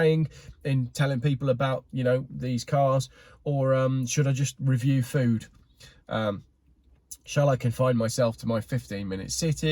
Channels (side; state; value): both; identical; correlation 1.00